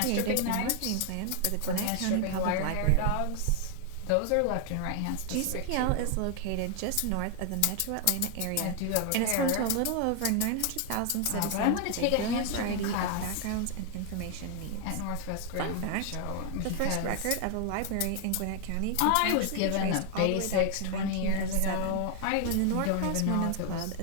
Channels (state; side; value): different; both; correlation 0.00